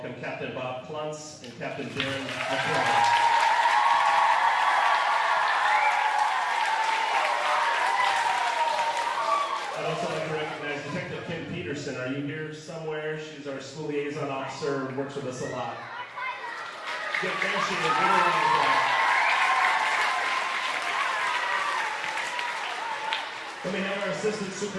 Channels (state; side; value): identical; both; correlation 1.00